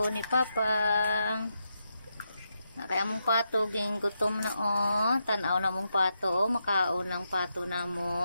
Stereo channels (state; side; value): inverted; both; correlation -0.84